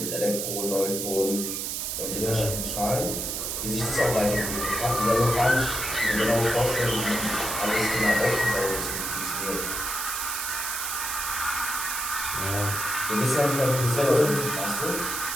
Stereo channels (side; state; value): right; noise; hiss, 3 dB below the sound